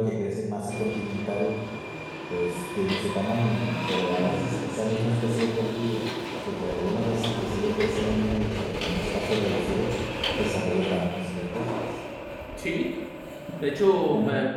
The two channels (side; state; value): both; identical; correlation 1.00